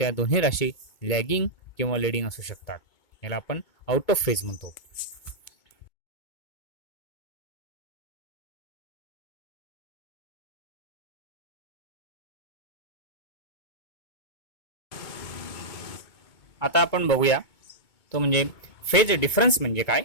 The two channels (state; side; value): late; right; 2.2 ms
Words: दोन्ही राशी लॅगिंग किंवा लीडिंग असू शकतात. याला आपण आउट ऑफ फेज म्हणतो. आता आपण बघूया तो म्हणजे फेज डिफरन्स म्हणजे काय.